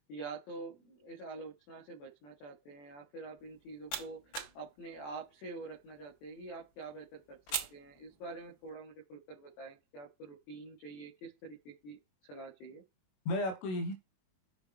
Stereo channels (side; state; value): right; late; 21 ms